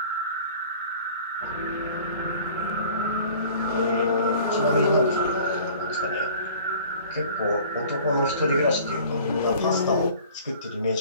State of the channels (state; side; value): inverted; both; correlation -0.48